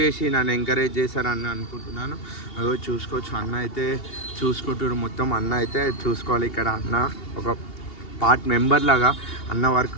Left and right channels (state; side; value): late; right; 2.8 ms